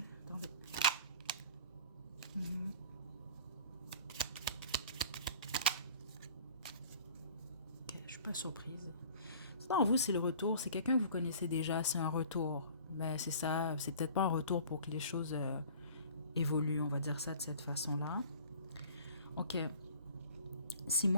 Attendez. Ok, je suis pas surprise. Non, vous, c'est le retour. C'est quelqu'un que vous connaissez déjà. C'est un retour. Ben, c'est ça. C'est peut-être pas un retour pour que les choses évoluent. On va dire ça de cette façon-là. Ok. Si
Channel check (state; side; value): inverted; both; correlation -0.46